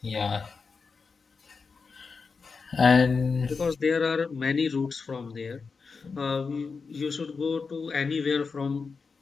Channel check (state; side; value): quieter; right; 4.9 dB